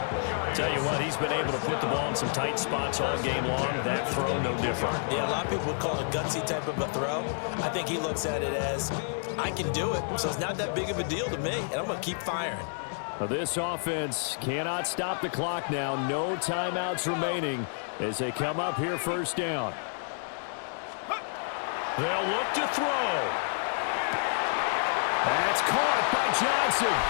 Tell you what, he's been able to put the ball in some tight spots all game long. That throw, no different. Yeah, a lot of people would call it a gutsy type of a throw. I think he looks at it as, I can do it, so it's not that big of a deal to me, and I'm going to keep firing. Now this offense cannot stop the clock now. No timeouts remaining as they come up here 1st down. They'll look to throw. That's caught by Johnson.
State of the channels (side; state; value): right; silent; digital silence